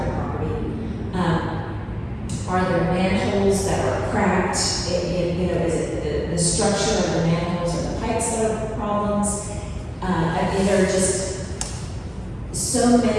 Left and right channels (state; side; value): identical; both; correlation 1.00